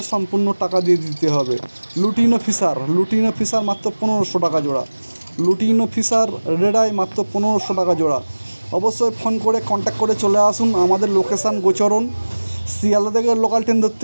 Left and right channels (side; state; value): both; inverted; correlation -1.00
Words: সম্পূর্ণ টাকা দিয়ে দিতে হবে। লুটিনো ফিশার মাত্র 1500 টাকা জোড়া। লুটিনো ফিশার রেড আই মাত্র 1500 টাকা জোড়া। অবশ্যই ফোন করে কন্ট্যাক্ট করে চলে আসুন। আমাদের লোকেশান গোচরণ, শিয়ালদা থেকে লোকাল ট্রেন